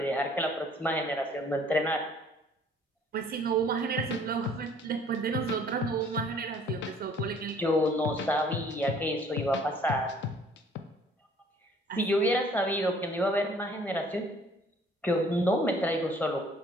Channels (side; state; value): both; normal; correlation 0.57